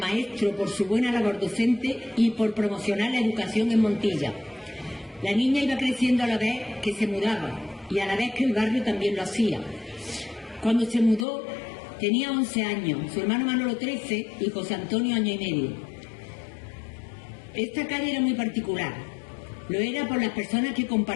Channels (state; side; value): drops out; right; at 11.2 s